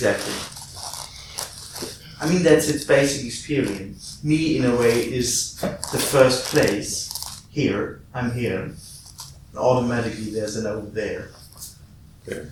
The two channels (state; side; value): identical; both; correlation 1.00